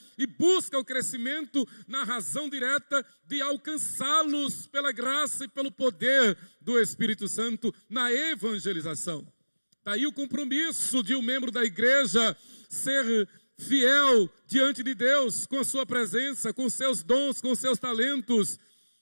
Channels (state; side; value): inverted; both; correlation -1.00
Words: e busca o crescimento na razão direta de alcançá-los pela graça e pelo poder do Espírito Santo na evangelização. Daí o compromisso de um membro da igreja ser fiel diante de Deus, com a sua presença, com seus dons, com seus talentos,